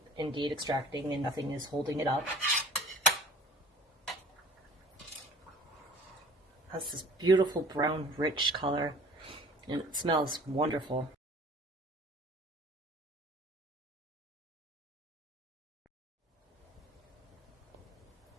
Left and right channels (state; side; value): normal; both; correlation 0.47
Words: indeed extracting and nothing is holding it up. It has this beautiful brown, rich color, and it smells wonderful.